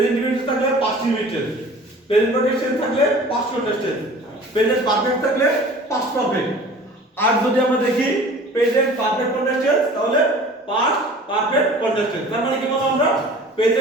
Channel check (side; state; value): both; normal; correlation 0.45